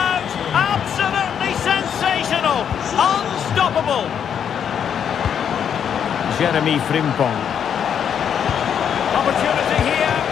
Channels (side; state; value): right; quieter; 8.2 dB